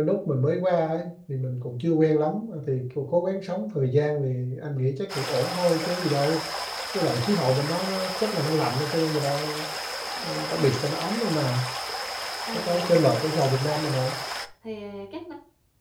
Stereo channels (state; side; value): identical; both; correlation 1.00